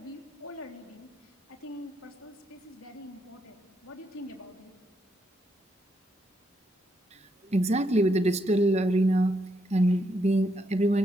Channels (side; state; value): both; normal; correlation 0.78